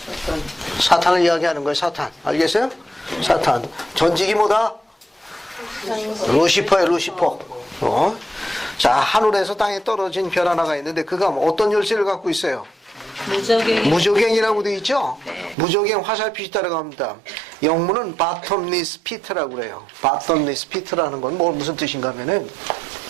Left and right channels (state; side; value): drops out; left; at 15.6 s